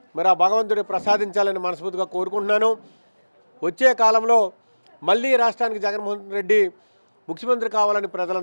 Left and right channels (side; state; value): both; inverted; correlation -1.00